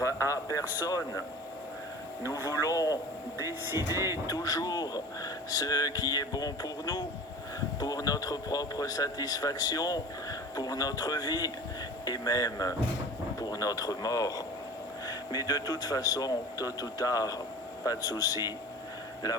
à personne, nous voulons décider toujours ce qui est bon pour nous, pour notre propre satisfaction, pour notre vie et même pour notre mort. Mais de toute façon, tôt ou tard, pas de souci, la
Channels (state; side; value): normal; both; correlation 0.39